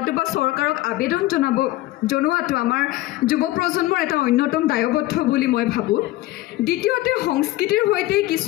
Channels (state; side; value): quieter; right; 17.2 dB